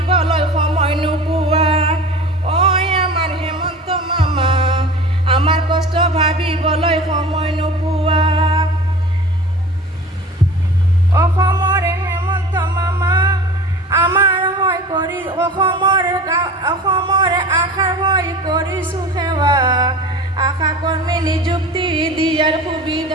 সময় নোপোৱা আমাৰ হেমন্ত মামা আমাৰ কষ্ট ভাবিবলৈ সময় নোপোৱা অসমৰে হেমন্ত মামা আমাৰ হয় কৰি অসমৰ আশাৰ হৈ কৰিছোঁ সেৱা আশা কৰ্মী নিযুক্তি দিয়াৰ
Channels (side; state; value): both; normal; correlation 0.38